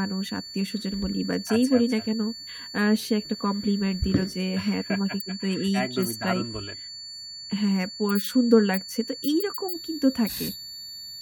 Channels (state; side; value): identical; both; correlation 1.00